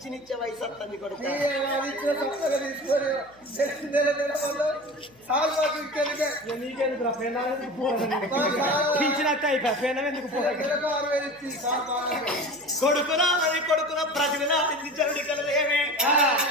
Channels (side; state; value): left; noise; hum, 30 dB below the sound